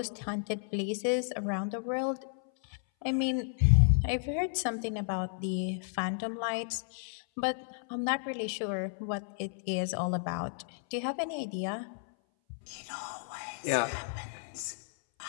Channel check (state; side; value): silent; right; 56 dB below the other